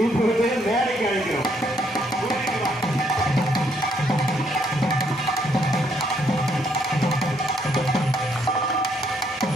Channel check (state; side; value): normal; both; correlation 0.71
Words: இப்பொழுது மேடைக்கு அழைக்கிறோம்.